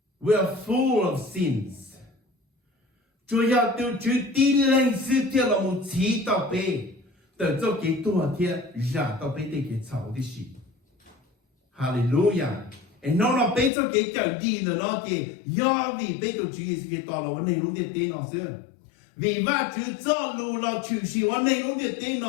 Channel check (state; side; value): drops out; right; at 13.7 s